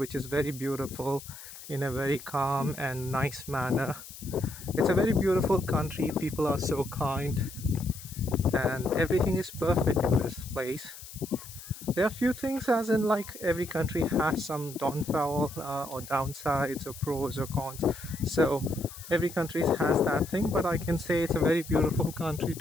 is very beautiful in a very calm and nice manner. It's a very beautiful country. People are so kind and everything is perfect in this place. There are few things, as in like every country has some downfall or downsides or pros or cons. So every country has that thing, but I can say it's a very beautiful country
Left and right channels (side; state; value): left; noise; hiss, 15 dB below the sound